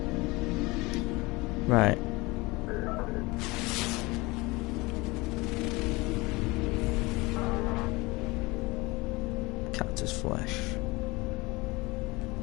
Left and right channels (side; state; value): right; quieter; 23.3 dB